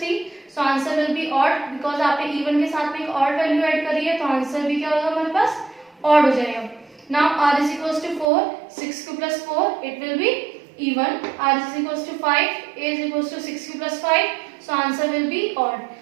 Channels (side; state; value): left; drops out; at 8.2 s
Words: 3 so answer will be odd because आपने इवन के साथ में एक ऑड वैल्यू ऐड करी है तो आंसर भी क्या होगा हमारे पास ऑड हो जाएगा. Now r is equals to 4, 6q plus 4, it will be even. r is equals to 5, a is equals to 6q plus 5, so answer will be odd.